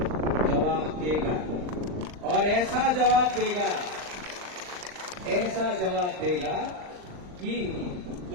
जवाब देगा और ऐसा जवाब देगा कि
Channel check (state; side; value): late; left; 39 ms